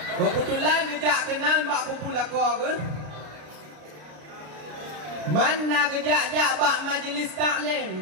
Kebetulan gejak kenal bak kubu lako ke. Mana gejak bak majlis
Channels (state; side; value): late; left; 33 ms